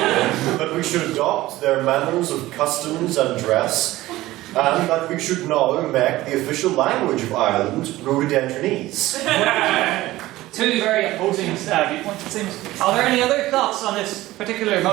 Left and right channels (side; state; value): left; quieter; 17.1 dB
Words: we should adopt their manners of customs and dress, and that we should now make the official language of Ireland rhododendronese. Two very opposing viewpoints, it seems. Are there any other thoughts on this particular